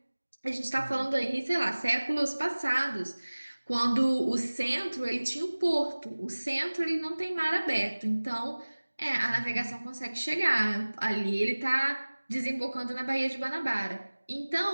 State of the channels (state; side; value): inverted; both; correlation -1.00